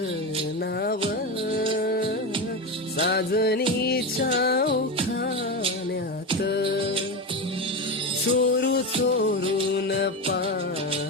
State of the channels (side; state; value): both; normal; correlation 0.18